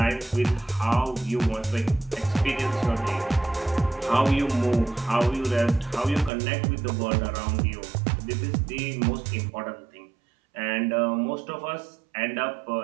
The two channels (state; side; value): drops out; left; at 6.3 s